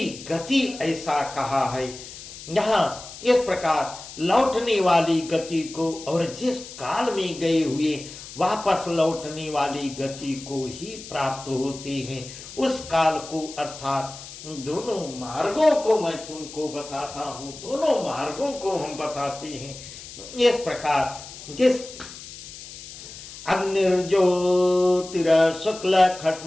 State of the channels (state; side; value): noise; left; hiss, 14 dB below the sound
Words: गति ऐसा कहा है। यहाँ इस प्रकार लौटने वाली गति को और जिस काल में गए हुए वापस लौटने वाली गति को ही प्राप्त होते हैं, उस काल को अर्थात दोनों मार्गों को मैं तुमको बताता हूं, दोनों मार्गों को हम बताते हैं। इस प्रकार जिस अग्निर्ज्योतिर शुक्ल